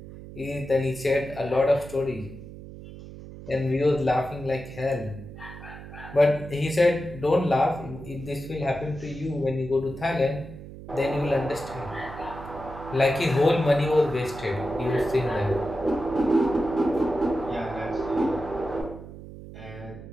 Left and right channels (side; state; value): right; noise; hum, 14 dB below the sound